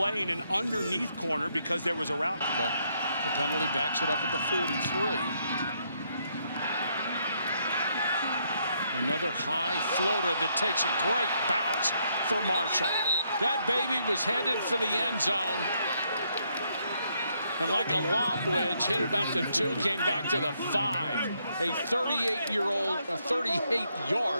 an underneath corner because there was a route. But the penalty backs it up at the 43. Another high floater that takes a great bounce for Marshall. That baby was headed for the end zone. And like a lob wedge, hit about the 2, came back to the 5. A 38-yard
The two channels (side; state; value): both; inverted; correlation -0.74